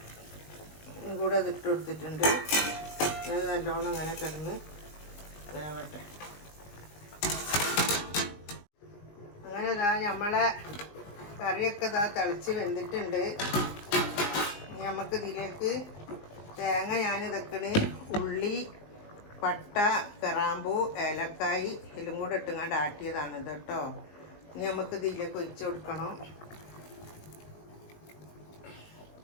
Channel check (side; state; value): right; late; 19 ms